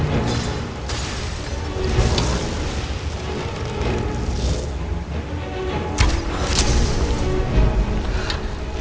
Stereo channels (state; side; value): identical; both; correlation 1.00